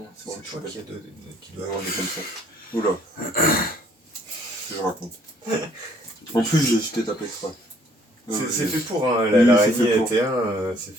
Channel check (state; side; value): normal; both; correlation 0.62